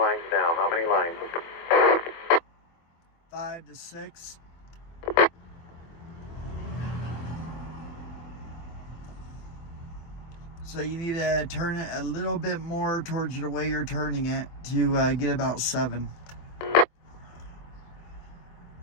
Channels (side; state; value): right; late; 24 ms